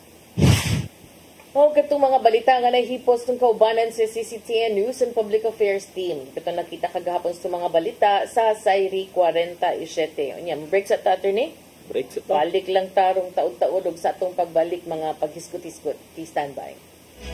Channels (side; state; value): both; identical; correlation 1.00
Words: itong mga balita nga nahipos ng kaubanan sa CCTN News and Public Affairs Team. Ito nakita kagahapon sa mga balita sa Sayri 47. Unya, break sa ta, attorney? Break sa ta. Balik lang tarong taod-taod og sa atong pagbalik mga paghiskot-hiskot. Please stand by.